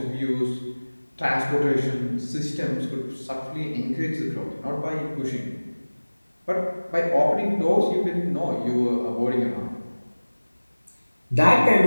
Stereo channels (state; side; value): inverted; both; correlation -1.00